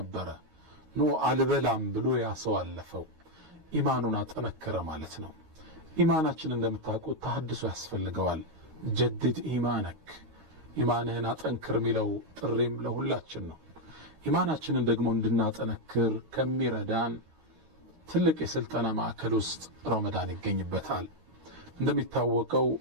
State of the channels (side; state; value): left; late; 13 ms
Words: ኖ አልበላም ብሎ ያሰው አለፈው። ኢማኑን አጠነከረ ማለት ነው። ኢማናችን እንደምታውቁት ተሐድሶ ያስፈልገዋል። ጀድድ ኢማነክ፣ ኢማንህን አጠንክር የሚለው ጥሪም ለሁላችን ነው። ኢማናችንን ደግሞ እንድናጠነክር ከሚረዳን ትልቅ የስልጠና ማዕከል ውስጥ ረመዳን ይገኝበታል። እንደሚታወቀው